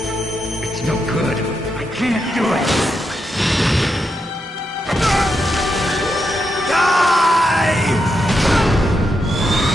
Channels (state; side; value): normal; both; correlation 0.83